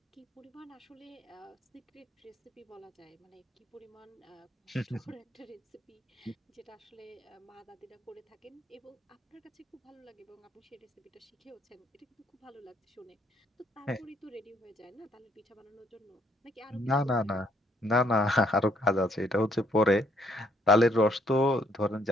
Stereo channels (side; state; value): both; normal; correlation 0.68